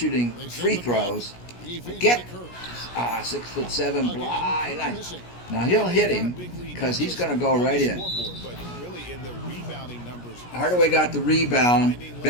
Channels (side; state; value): right; late; 17 ms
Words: free throws, get 6'7" blind. Now he'll hit him because he's going to go right in. Hardaway got the rebound.